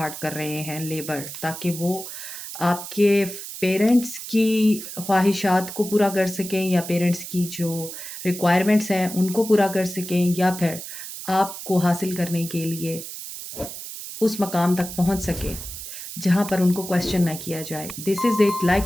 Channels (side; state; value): right; noise; hiss, 10 dB below the sound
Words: कर रहे हैं, लेबर, ताकि वो आपके पेरेंट्स की ख्वाहिशात को पूरा कर सकें, या पेरेंट्स की जो रिक्वायरमेंट्स हैं उनको पूरा कर सकें, या फिर आपको हासिल करने के लिए उस मकाम तक पहुंच सके जहां पर उनको क्वेश्चन ना किया जाए। This is it.